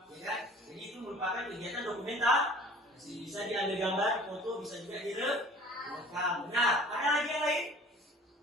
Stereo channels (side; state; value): both; normal; correlation 0.47